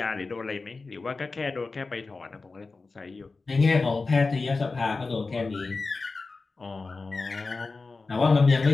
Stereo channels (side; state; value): right; quieter; 3.9 dB